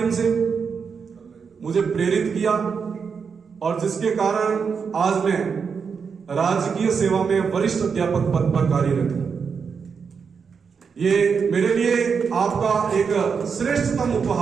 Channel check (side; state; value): left; quieter; 6.0 dB